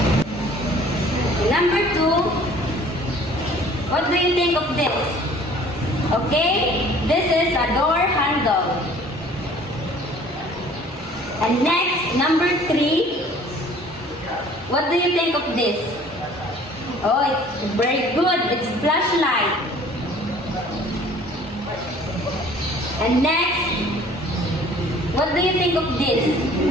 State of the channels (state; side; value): normal; both; correlation 0.52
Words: Number two, what do you think of this? Okay, this is a door handle. And next, number three, what do you think of this? Oh, it's very good. It's flashlight. And next, what do you think of this?